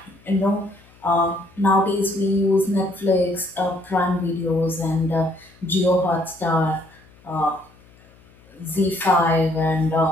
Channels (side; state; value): left; noise; hum, 28 dB below the sound